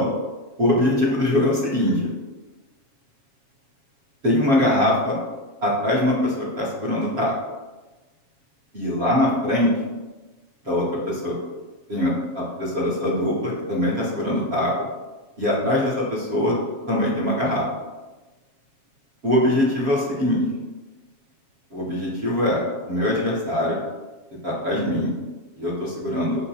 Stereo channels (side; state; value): left; late; 7.3 ms